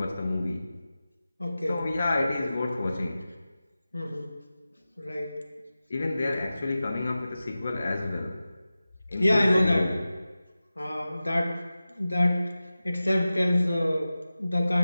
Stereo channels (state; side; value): inverted; both; correlation -0.95